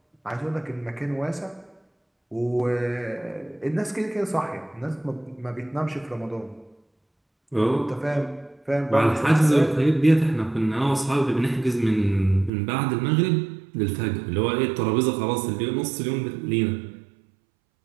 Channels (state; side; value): drops out; left; at 12.5 s